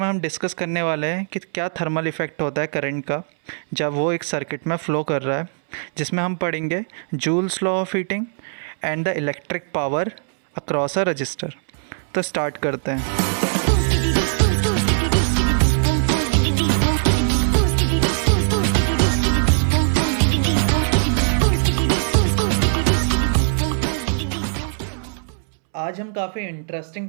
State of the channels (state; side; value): silent; left; 65 dB below the other